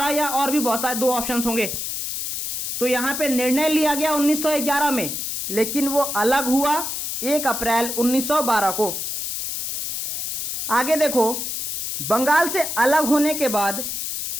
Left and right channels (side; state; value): left; noise; hiss, 3 dB below the sound